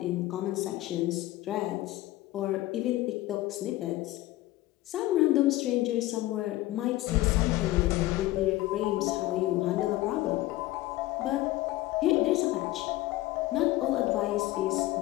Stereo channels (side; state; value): right; quieter; 17.2 dB